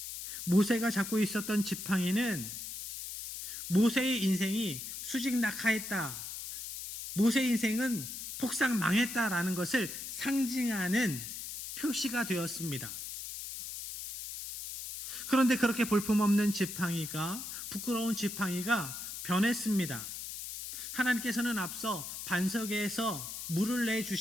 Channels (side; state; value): left; noise; hiss, 8 dB below the sound